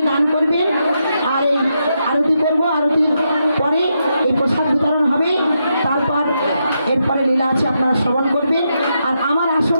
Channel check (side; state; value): both; inverted; correlation -0.83